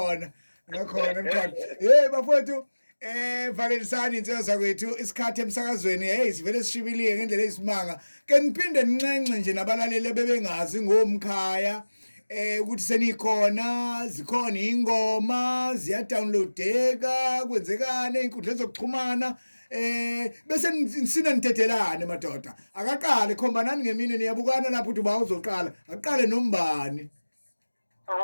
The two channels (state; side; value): inverted; both; correlation -1.00